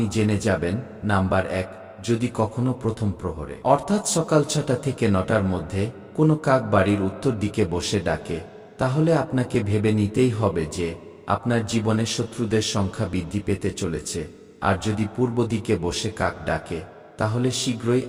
জেনে যাবেন। নাম্বার 1, যদি কখনো প্রথম প্রহরে অর্থাৎ সকাল 6টা থেকে 9টার মধ্যে কোনো কাক বাড়ির উত্তর দিকে বসে ডাকে, তাহলে আপনাকে ভেবে নিতেই হবে যে আপনার জীবনে শত্রুদের সংখ্যা বৃদ্ধি পেতে চলেছে। আর যদি পূর্ব দিকে বসে কাক ডাকে, তাহলে শীঘ্রই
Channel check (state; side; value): identical; both; correlation 1.00